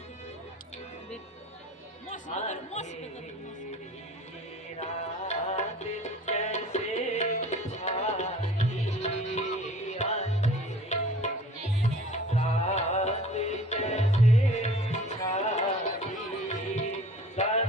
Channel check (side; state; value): both; normal; correlation 0.47